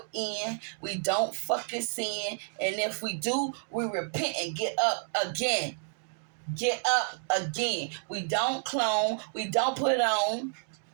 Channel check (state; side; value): silent; left; 58 dB below the other